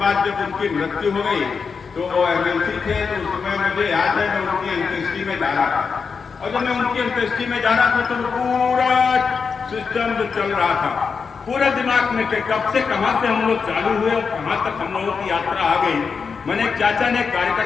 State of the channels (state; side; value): quieter; right; 5.5 dB